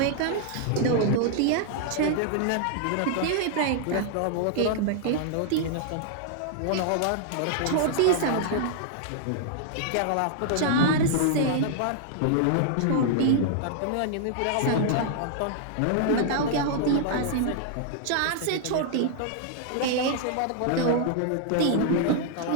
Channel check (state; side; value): different; both; correlation -0.01